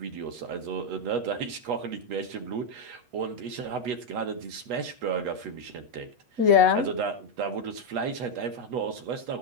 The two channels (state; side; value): late; left; 8.2 ms